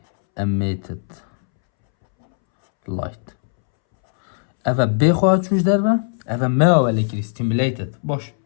emitted light اوه بخواهد چوش در و اوه ما ولی کری stimulated باش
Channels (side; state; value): right; silent; 66 dB below the other